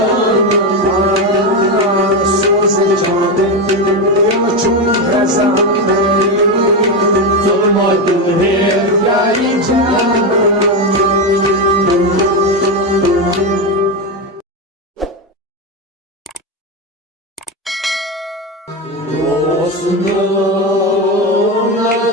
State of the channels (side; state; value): both; normal; correlation 0.12